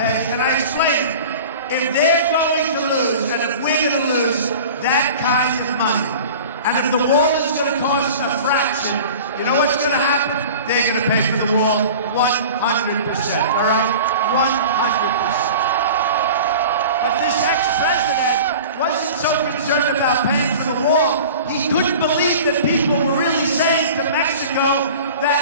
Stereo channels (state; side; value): inverted; both; correlation -0.39